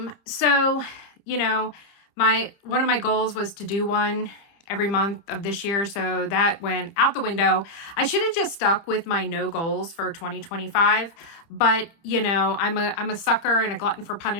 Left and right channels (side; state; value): right; late; 30 ms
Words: So, you know, one of my goals was to do one every month of this year. So that went out the window. I should have just stuck with my no goals for 2025. But, you know, I'm a sucker and a glutton for